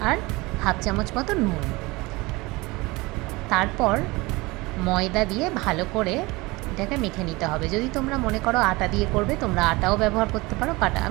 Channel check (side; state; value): left; quieter; 22.8 dB